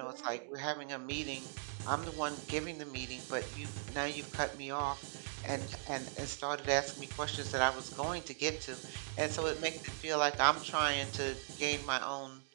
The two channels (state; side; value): silent; left; digital silence